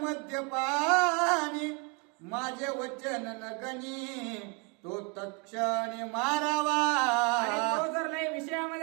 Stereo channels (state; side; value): quieter; left; 33.6 dB